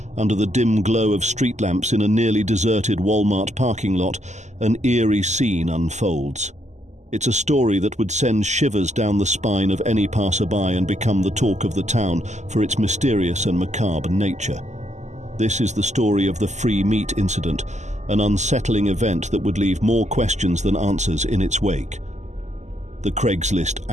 under the dim glow of street lamps in a nearly deserted Walmart parking lot, an eerie scene unfolds. It's a story that would send shivers down the spine of any passerby and become the talk of the town for its mysterious and macabre nature. This is the story of the Free Meat incident, an unsettling event that would leave more questions than answers in its wake. The Craigslist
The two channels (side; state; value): left; late; 0.34 ms